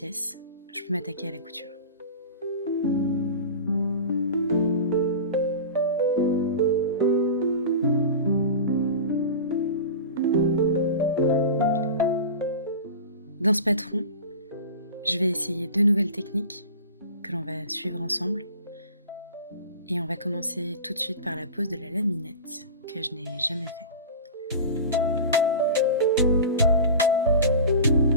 je peux m'attaquer à la couture. Dans ce patron, je vais essayer 2 nouvelles techniques que l'on va suivre ensemble. Et on va commencer tout de suite par la pose de la laminette, que je n'ai jamais fait.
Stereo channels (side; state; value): both; inverted; correlation -0.33